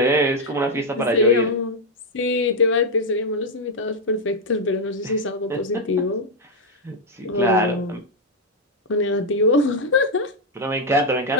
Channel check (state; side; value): normal; both; correlation 0.01